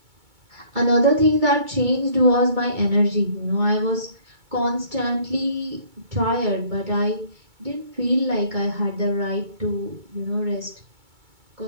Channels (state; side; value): late; left; 2.2 ms